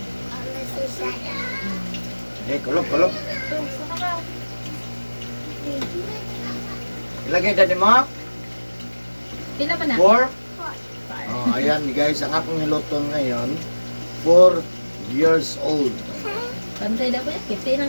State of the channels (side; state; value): both; inverted; correlation -1.00